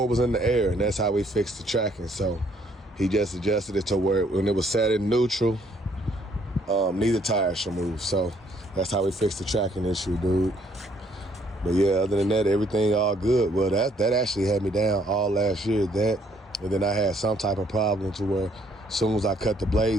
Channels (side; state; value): both; normal; correlation 0.66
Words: was in the air, and that's how we fixed the tracking. So he just adjusted it to where when it was set in neutral, neither tire should move. So that's how we fixed the tracking issue, dude. But yeah, other than that, everything all good. Well, that actually had me down all last year. And then I had some type of problem to where as soon as I cut the